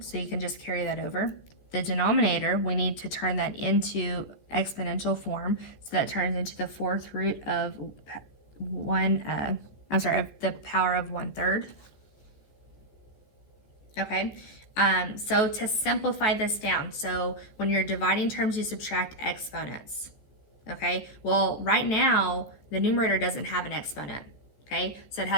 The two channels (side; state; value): right; late; 14 ms